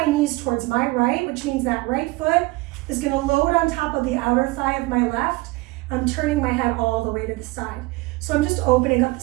knees towards my right, which means that right foot is going to load on top of the outer thigh of my left. I'm turning my head all the way to the side. So I'm just opening up the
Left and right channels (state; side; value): quieter; left; 22.6 dB